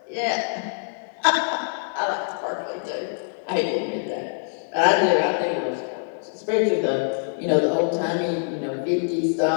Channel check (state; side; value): silent; right; digital silence